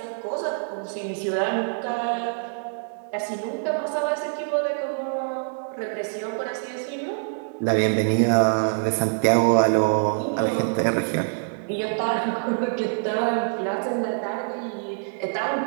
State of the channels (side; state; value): left; silent; digital silence